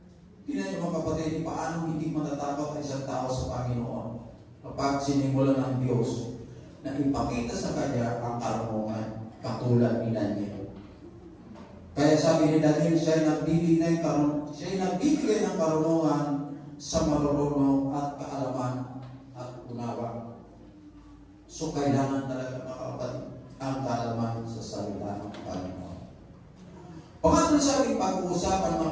Tingnan niyo, mga kapatid, paano hindi matatakot ang isang tao sa Panginoon kapag sinimulan ng Diyos na ipakita sa kanya ang karunungan katulad ni Daniel. Kaya sabi ni Daniel, siya nagbibigay ng karunungan sa marunong at kaalaman at unawa. So kailangan talaga, mga kapatid, ang kaalaman sa salita ng Panginoon. Pangatlo sa ating pag-uusapan,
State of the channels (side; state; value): both; identical; correlation 1.00